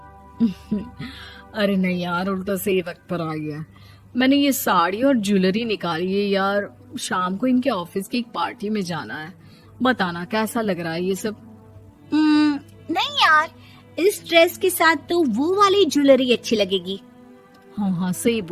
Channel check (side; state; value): both; identical; correlation 1.00